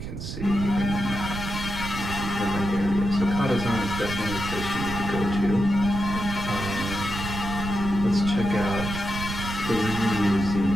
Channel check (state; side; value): noise; right; rumble, 6 dB below the sound